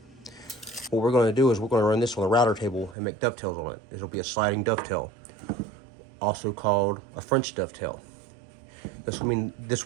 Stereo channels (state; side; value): drops out; left; at 3.0 s